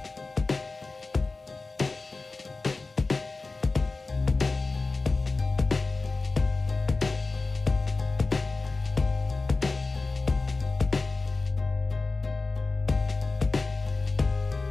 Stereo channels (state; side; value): quieter; right; 3.7 dB